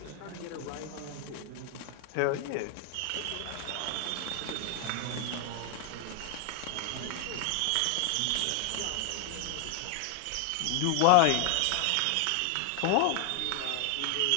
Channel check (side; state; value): both; different; correlation 0.00